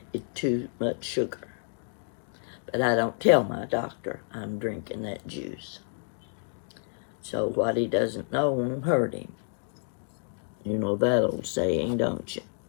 It's too much sugar. But I don't tell my doctor I'm drinking that juice. So what he doesn't know won't hurt him. You know that old saying, don't you?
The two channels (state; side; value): silent; right; digital silence